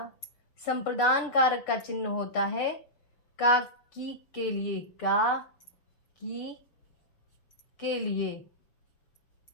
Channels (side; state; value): right; late; 6.8 ms